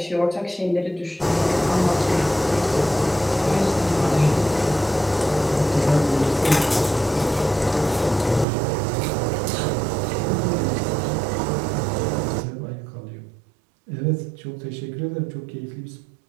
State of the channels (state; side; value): drops out; left; at 8.5 s